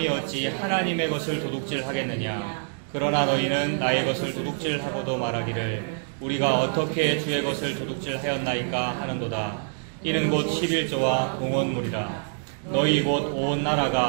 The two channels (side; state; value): left; silent; digital silence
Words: 어찌 하나님의 것을 도둑질하겠느냐. 그러나 너희는 나의 것을 도둑질하고도 말하기를 우리가 어떻게 주의 것을 도둑질하였나이까 하는도다. 이는 곧 11조와 공헌물이라. 너희 곧 온